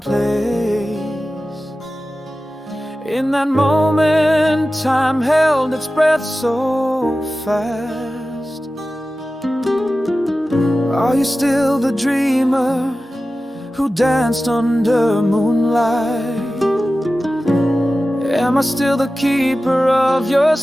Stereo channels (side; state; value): both; normal; correlation 0.95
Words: place. In that moment, time held its breath so fast. Are you still the dreamer who danced under moonlight? Am I still the keeper of your